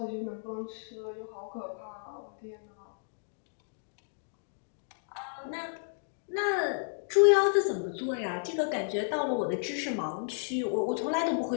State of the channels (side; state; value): right; silent; digital silence